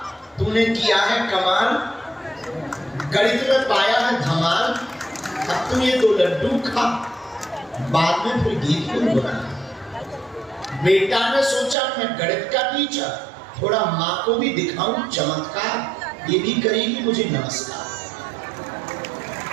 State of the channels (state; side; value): drops out; left; at 11.8 s